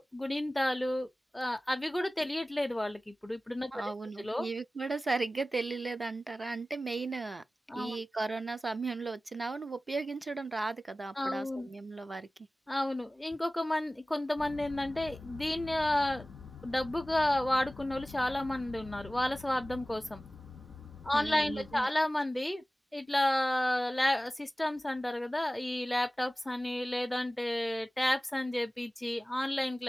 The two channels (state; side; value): normal; both; correlation 0.97